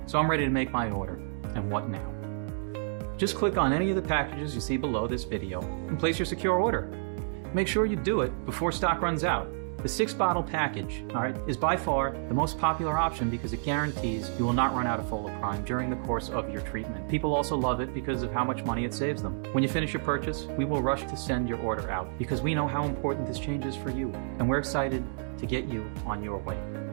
so I'm ready to make my order. And what now? Just click on any of the packages you see below this video and place your secure order. Make sure you do it before stock runs out. The 6-bottle package, is by far the most popular option because it guarantees you will not run out of foliprime during the course of your treatment. People also love it because of how much money it saves them. When you finish your purchase, we will rush to send your order out because we know how important this change is for you, and we're excited to get you on your way.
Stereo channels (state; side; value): silent; left; digital silence